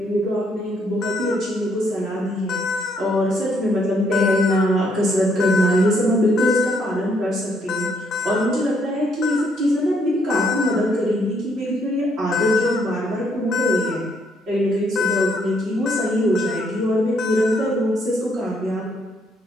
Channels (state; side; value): normal; both; correlation 0.70